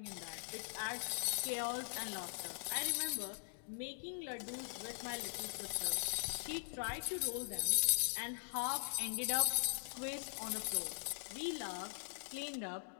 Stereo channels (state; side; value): silent; right; digital silence